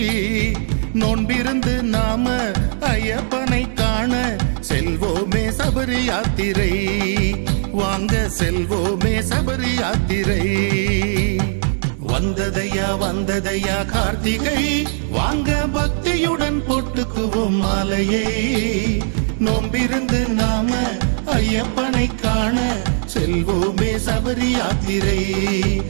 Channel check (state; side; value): silent; left; digital silence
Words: நோன்பிருந்து நாம ஐயப்பனை காண செல்வோமே சபரி யாத்திரை, வாங்க செல்வோமே சபரி யாத்திரை. வந்ததையா கார்த்திகை, வாங்க பக்தியுடன் போட்டுக்குவோம் மாலையை. நோம்பிருந்து நாம ஐயப்பனை காண செல்வோமே சபரி யாத்திரை,